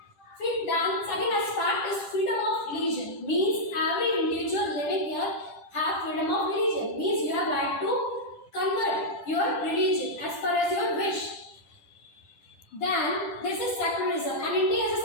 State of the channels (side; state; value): right; late; 10 ms